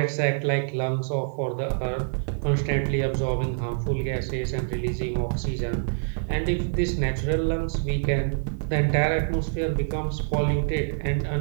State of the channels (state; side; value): silent; left; digital silence